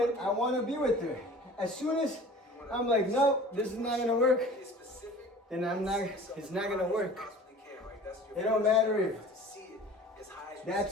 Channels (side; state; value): both; normal; correlation 0.43